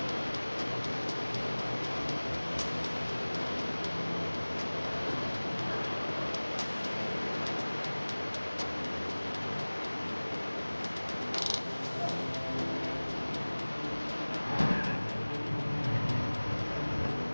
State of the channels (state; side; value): inverted; both; correlation -1.00